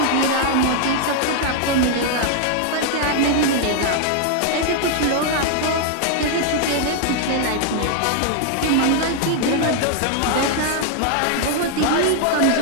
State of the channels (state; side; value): different; both; correlation 0.00